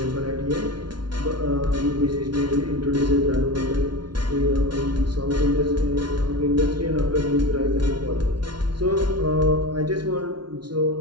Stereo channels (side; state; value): left; late; 0.71 ms